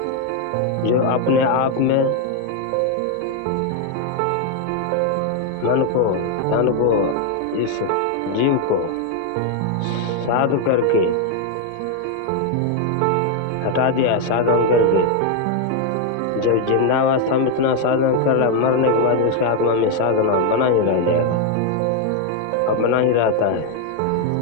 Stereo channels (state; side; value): different; both; correlation 0.01